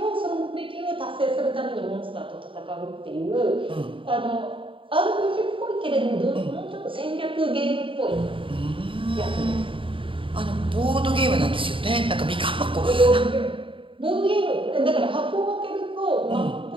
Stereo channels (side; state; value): left; late; 0.25 ms